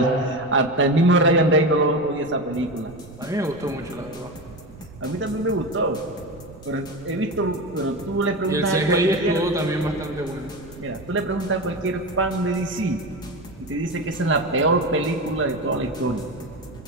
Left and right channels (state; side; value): noise; right; rumble, 19 dB below the sound